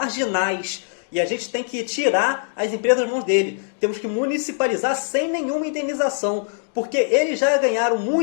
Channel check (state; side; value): silent; right; digital silence